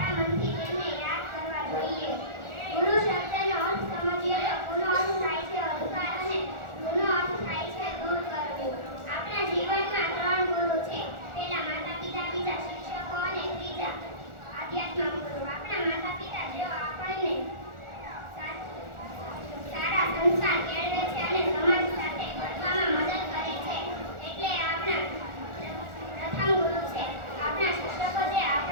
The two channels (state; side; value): late; left; 1.4 ms